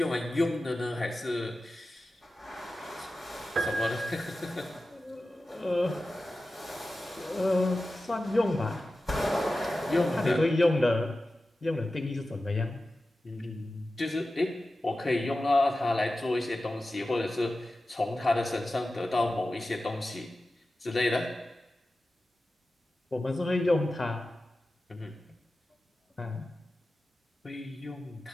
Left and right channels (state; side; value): normal; both; correlation 0.94